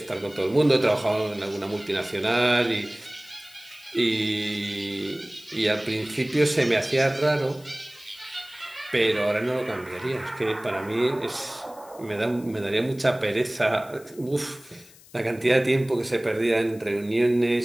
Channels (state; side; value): noise; left; hiss, 24 dB below the sound